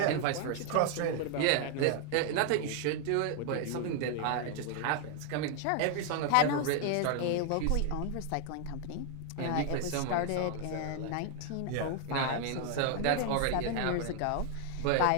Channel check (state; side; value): different; both; correlation 0.00